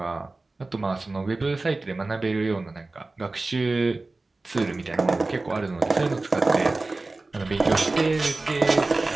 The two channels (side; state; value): left; quieter; 3.3 dB